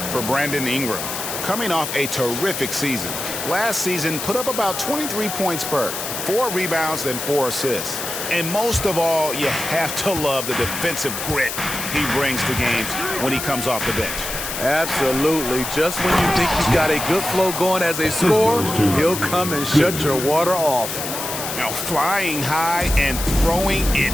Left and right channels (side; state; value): left; noise; hiss, 5 dB below the sound